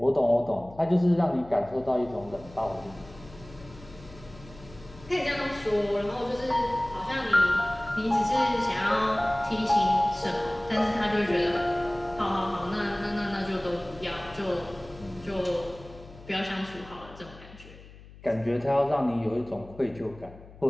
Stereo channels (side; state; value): left; noise; hum, 19 dB below the sound